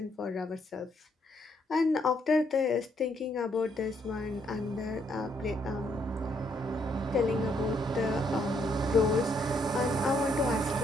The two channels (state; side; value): normal; both; correlation 0.73